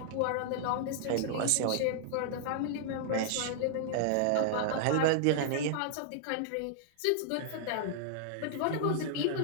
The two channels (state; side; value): different; both; correlation -0.01